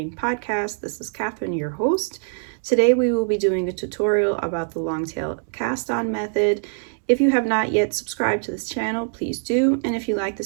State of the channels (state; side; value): silent; left; digital silence